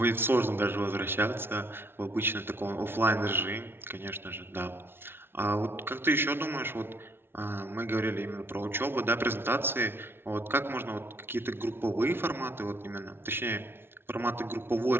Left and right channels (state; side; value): late; left; 0.11 ms